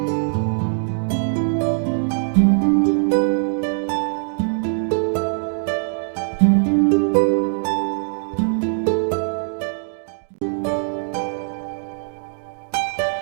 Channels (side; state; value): left; silent; digital silence